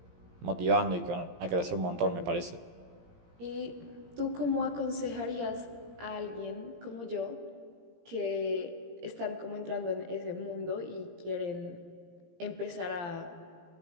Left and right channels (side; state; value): left; late; 17 ms